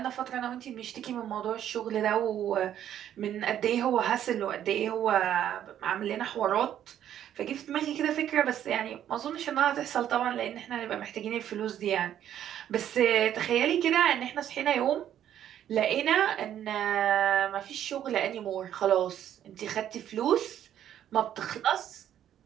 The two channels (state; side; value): quieter; left; 10.7 dB